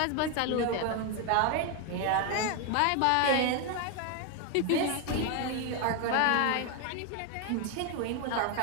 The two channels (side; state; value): both; different; correlation 0.01